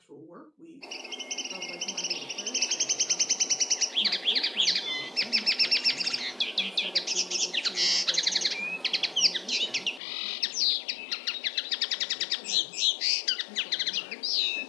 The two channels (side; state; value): right; drops out; at 10.0 s